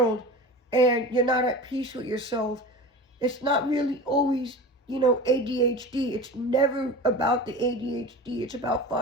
and you're not at peace with yourself. It's not really always, ADHD. It's never about the ADHD. It's about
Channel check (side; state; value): both; normal; correlation 0.32